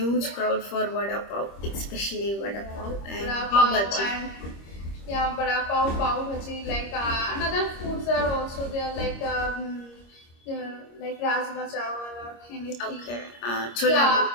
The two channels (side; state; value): right; late; 25 ms